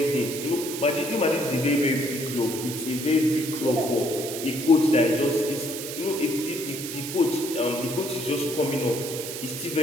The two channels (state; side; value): noise; right; hiss, 7 dB below the sound